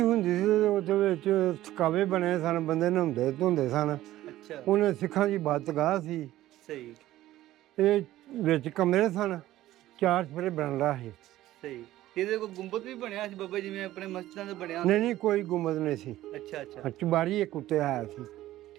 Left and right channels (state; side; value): quieter; left; 14.9 dB